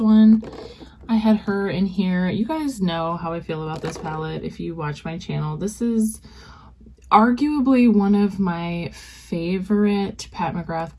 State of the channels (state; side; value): identical; both; correlation 1.00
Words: I had her in here. You guys know how I feel about this palette if you watch my channel. This is arguably one of my favorite Pat McGrath